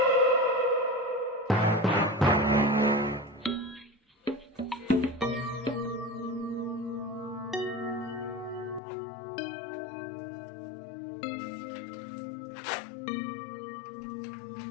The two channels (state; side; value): drops out; right; at 8.8 s